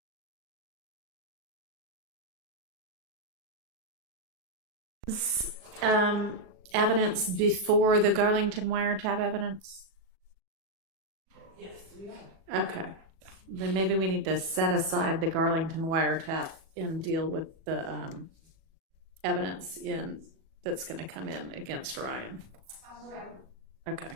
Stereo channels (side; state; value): left; late; 37 ms